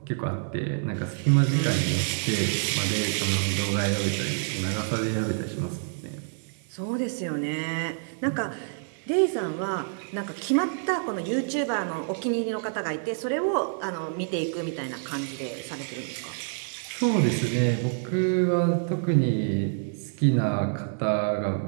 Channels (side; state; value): left; silent; 58 dB below the other